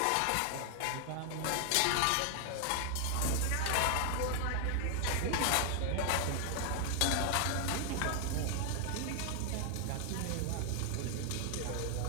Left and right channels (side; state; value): both; different; correlation 0.00